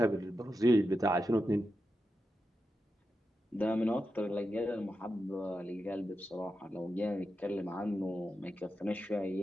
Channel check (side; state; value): both; normal; correlation 0.89